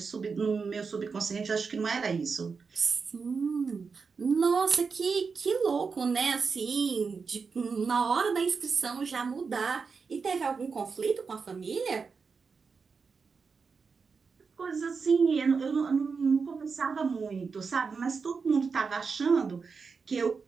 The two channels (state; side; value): quieter; left; 5.2 dB